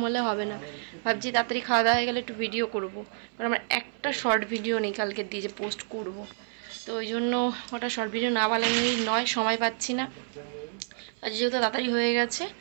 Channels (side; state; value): left; silent; 59 dB below the other